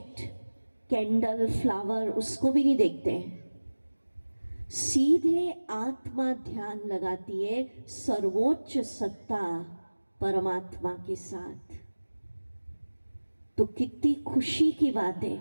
कैंडल, फ्लावर, उसको भी नहीं देखते हैं। सीधे आत्मा ध्यान लगाती है सर्वोच्च सत्ता परमात्मा के साथ। तो कितनी खुशी की बात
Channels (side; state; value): both; inverted; correlation -1.00